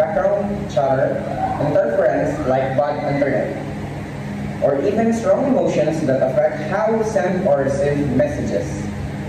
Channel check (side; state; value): both; identical; correlation 1.00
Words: chatter, interference like bad internet, or even strong emotions that affect how we send or receive messages.